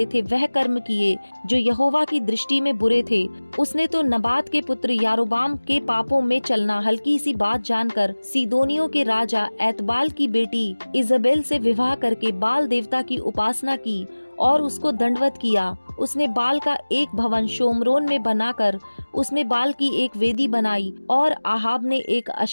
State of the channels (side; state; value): both; inverted; correlation -1.00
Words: थे वह कर्म किए जो यहोवा की दृष्टि में बुरे थे। उसने तो नबात के पुत्र यारोबाम के पापों में चलना हल्की सी बात जानकर सीदोनियों के राजा एतबाल की बेटी इजबेल से विवाह करके बाल देवता की उपासना की और उसको दंडवत किया। उसने बाल का एक भवन शोमरोन में बनाकर उसमें बाल की एक वेदी बनाई और आहाब ने एक